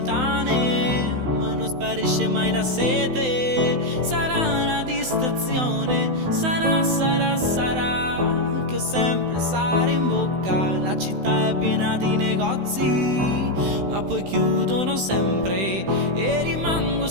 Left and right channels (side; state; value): left; late; 16 ms